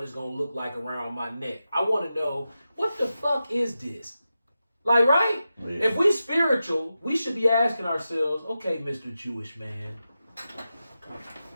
it's gonna look like around my neck. I want to know, what the fuck is this? Like, right? Yeah. If we spiritual, we should be asking ourselves, okay, Mr. Jewish man,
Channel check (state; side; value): inverted; both; correlation -0.91